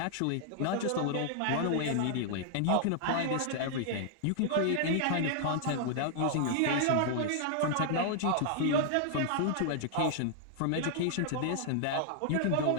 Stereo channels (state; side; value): different; both; correlation -0.01